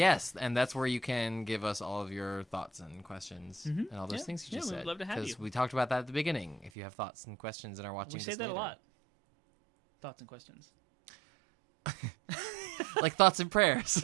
and that's where you can give us all of your thoughts and questions and all those Yeah. things you Yeah, just we'd said. love to have you. we talked about that at the beginning. If you have thoughts and questions and are watching We this say that later. a lot. Thoughts and questions. Like thoughts and prayers.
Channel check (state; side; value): drops out; left; at 6.7 s